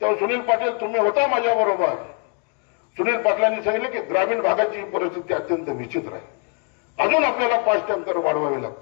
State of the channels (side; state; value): right; quieter; 39.0 dB